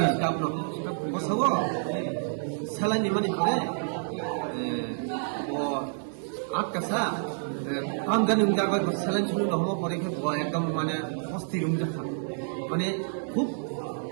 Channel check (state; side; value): silent; left; 59 dB below the other